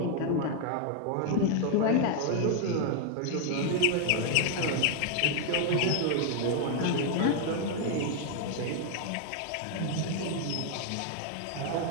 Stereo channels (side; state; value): both; different; correlation 0.01